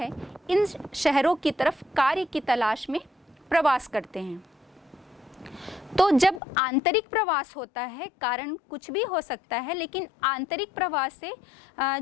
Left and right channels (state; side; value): drops out; right; at 6.4 s